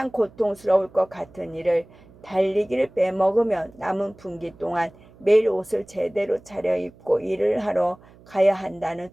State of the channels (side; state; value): right; noise; hum, 25 dB below the sound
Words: 고통스러울 것 같은 일을 달리기를 빼먹으면 남은 분기 동안 매일 옷을 제대로 차려입고 일을 하러 가야 한다는